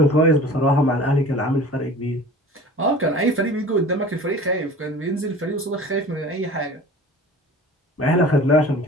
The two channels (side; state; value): both; normal; correlation 0.42